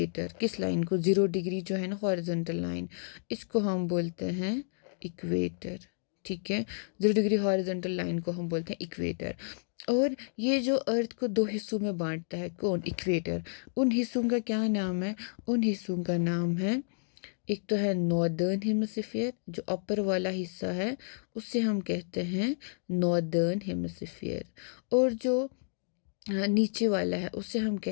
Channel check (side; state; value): right; silent; digital silence